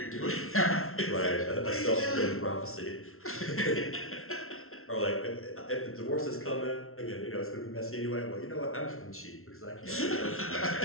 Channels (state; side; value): late; right; 0.62 ms